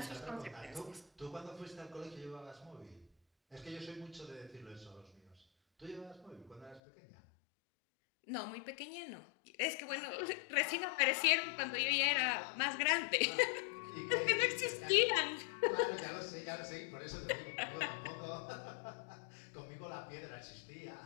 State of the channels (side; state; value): right; drops out; at 6.8 s